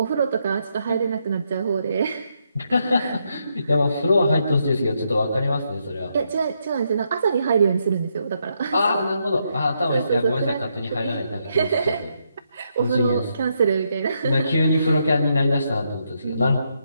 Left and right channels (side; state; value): both; inverted; correlation -0.78